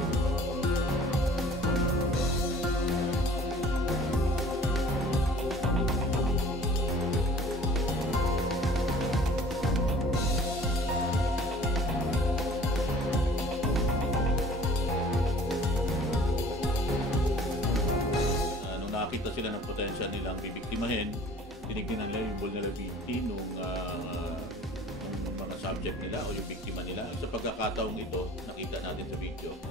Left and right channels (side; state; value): both; normal; correlation 0.49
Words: Nakita sila ng potential nilang bibiktimahin, tinignan nila yung vulnerability nung mga subject nila o yung biktima nila. Sa pagkakataong ito, nakita natin sa video,